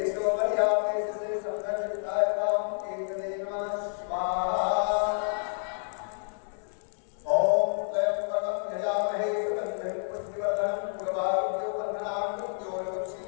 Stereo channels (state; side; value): silent; right; digital silence